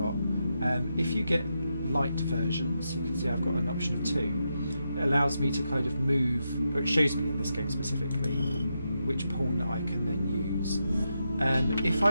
If you get light versions, you can see I've got an option of 2. It allows me to kind of move, or it shows me in this game specifically, which pawn that I can then use. If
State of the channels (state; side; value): inverted; both; correlation -0.85